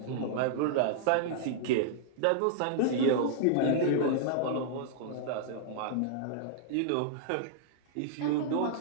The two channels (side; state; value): both; different; correlation -0.01